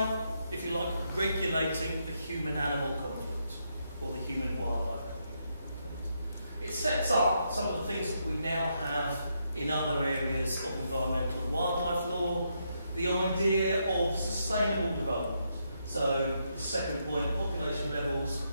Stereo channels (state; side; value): inverted; both; correlation -0.79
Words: if you like, regulating the human-animal conflict or the human-wildlife conflict. It sets up some of the things that we now have in other areas of environmental and wildlife law, the idea of sustainable development. So the second point, population levels